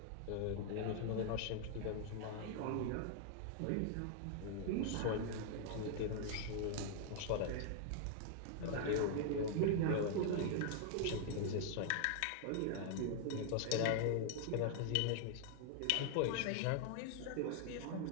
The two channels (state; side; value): different; both; correlation -0.01